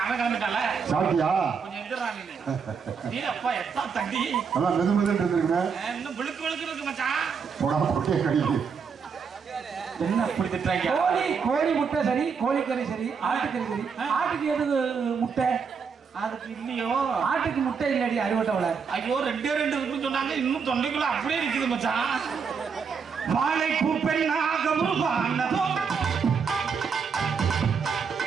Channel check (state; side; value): quieter; left; 6.0 dB